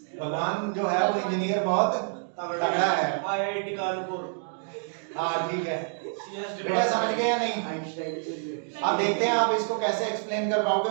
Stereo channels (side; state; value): left; silent; 60 dB below the other